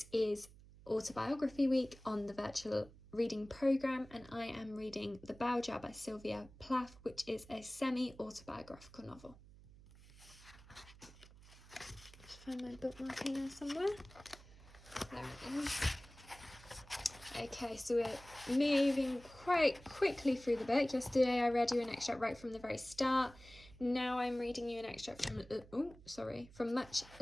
is Autobiography Week on the virtual reading programme and I am reading The Bow Jar by Syvia Plath, which is a semi-autobiographical novel. Just find my bookmark in there somewhere. There it is. Okay, so we're moving quite quickly through the book. Yesterday I read you an extract right from the very start. Now I'm reading you an extract from much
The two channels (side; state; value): right; noise; hum, 21 dB below the sound